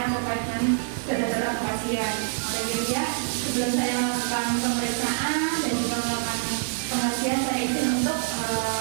terkait dengan data pasien. Jadi ya, sebelum saya melakukan pemeriksaan dan juga melakukan pengajian, saya izin untuk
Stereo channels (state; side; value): silent; left; digital silence